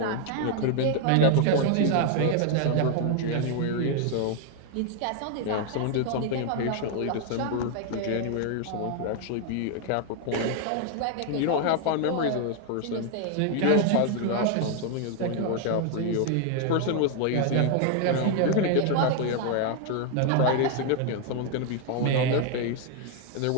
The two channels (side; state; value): both; different; correlation 0.00